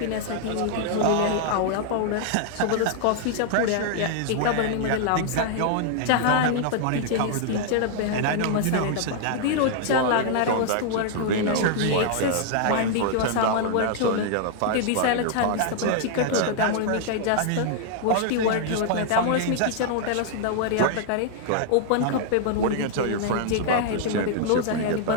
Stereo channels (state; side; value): different; both; correlation 0.00